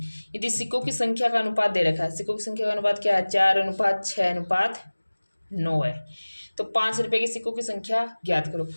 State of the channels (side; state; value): both; inverted; correlation -1.00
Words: यदि सिक्कों की संख्या का अनुपात दे रखा है, सिक्कों की संख्या का अनुपात क्या है, 4:6:9 है। तो 5 रुपये के सिक्कों की संख्या ज्ञात करो।